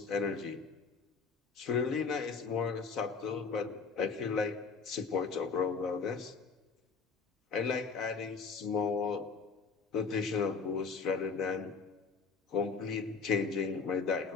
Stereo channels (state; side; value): quieter; right; 5.0 dB